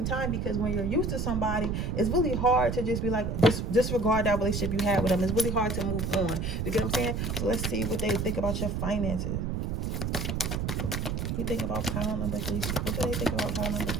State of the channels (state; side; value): noise; right; rumble, 1 dB below the sound